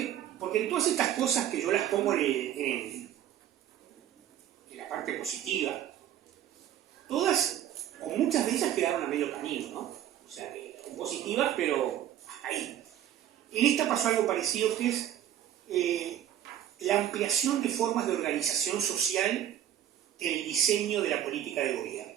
porque en todas estas cosas que yo las pongo en la parte positiva, todas, o muchas de ellas quedaron a medio camino, ¿no? O sea, que son positivas, pero hasta ahí. En esta pasó algo parecido, que es la ampliación de formas de organización social en el diseño de la política de gobierno.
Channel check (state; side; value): quieter; left; 11.3 dB